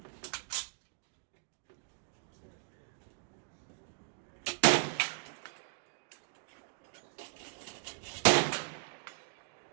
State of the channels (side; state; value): left; silent; digital silence